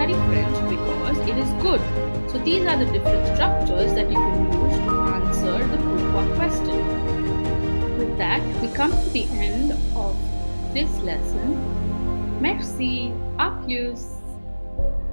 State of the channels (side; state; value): both; inverted; correlation -1.00